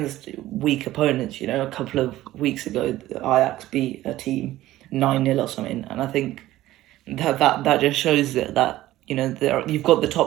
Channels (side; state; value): left; quieter; 15.4 dB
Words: weak opponents. A couple of weeks ago, Ajax beat a team 9-0 or something, and I think that just shows that you've got the